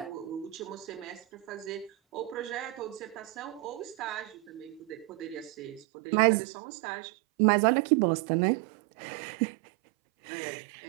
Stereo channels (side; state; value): left; drops out; at 5.9 s